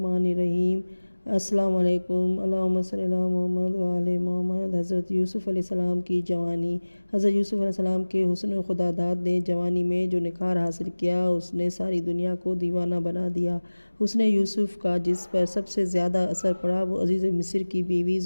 الرحیم۔ السلام علیکم۔ اللہم صلی علی محمد وعلی محمد۔ حضرت یوسف علیہ السلام کی جوانی۔ حضرت یوسف علیہ السلام کے حسن خداداد نے جوانی میں جو نکھار حاصل کیا اس نے ساری دنیا کو دیوانہ بنا دیا۔ حسن یوسف کا جس پر سب سے زیادہ اثر پڑا وہ عزیز مصر کی بیوی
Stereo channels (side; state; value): both; inverted; correlation -1.00